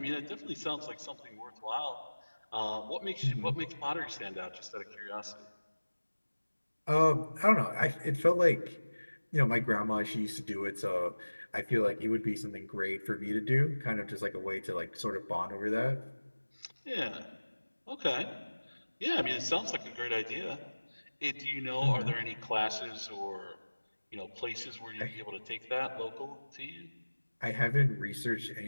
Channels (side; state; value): both; inverted; correlation -1.00